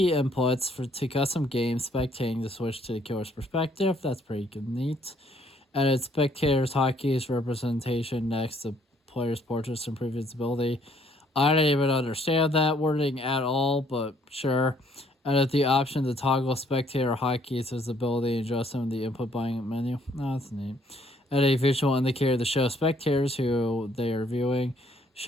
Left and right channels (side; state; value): both; normal; correlation 0.65